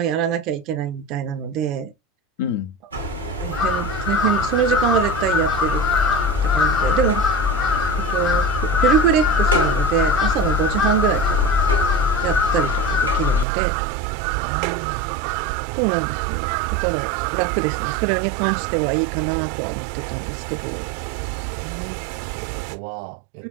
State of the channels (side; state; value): left; drops out; at 13.5 s